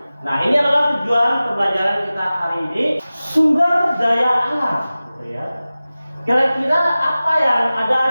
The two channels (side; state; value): both; inverted; correlation -0.97